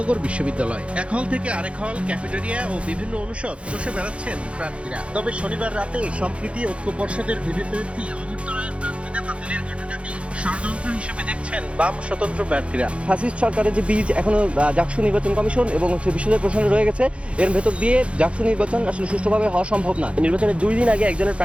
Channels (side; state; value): left; late; 0.061 ms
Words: বিশ্ববিদ্যালয়। এক হল থেকে আরেক হল, ক্যাফেটেরিয়া ও বিভিন্ন অনুষদ চষে বেড়াচ্ছেন প্রার্থীরা। তবে শনিবার রাতে সম্প্রীতি ঐক্য পর্ষদের ভিভিপ্রার্থী অমর্ত্য রায়ের প্রার্থিতা বাতিলের ঘটনাটি ষড়যন্ত্র হিসেবে দেখছেন বাম স্বতন্ত্র প্রার্থীরা। ফ্যাসিস্ট সরকারের যে বীজ এখনো ডাকসু নির্বাচন কমিশন এবং বিশ্ববিদ্যালয় প্রশাসনে রয়ে গেছে, এর ভেতর দিয়ে ডাকসু নির্বাচন আসলে সুষ্ঠুভাবে হওয়া সম্ভব না। নির্বাচনের ২ দিন আগে একজনের